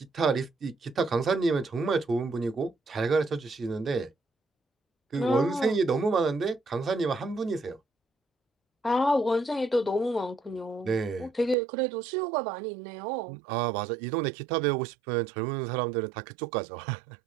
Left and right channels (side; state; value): left; drops out; at 11.6 s